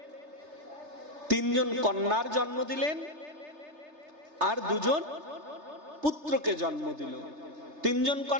তিনজন কন্যার জন্ম দিলেন আর দুজন পুত্রকে জন্ম দিল। তিনজন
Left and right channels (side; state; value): left; late; 3.3 ms